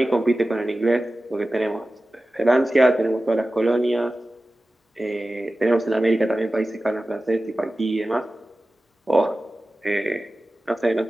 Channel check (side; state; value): both; normal; correlation 0.95